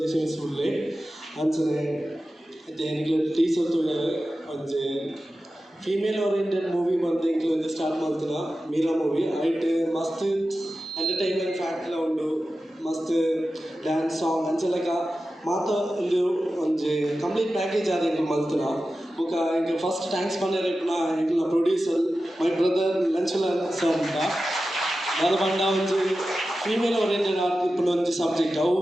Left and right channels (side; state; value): both; normal; correlation 0.93